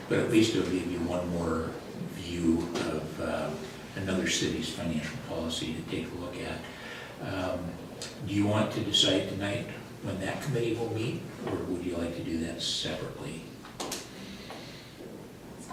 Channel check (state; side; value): identical; both; correlation 1.00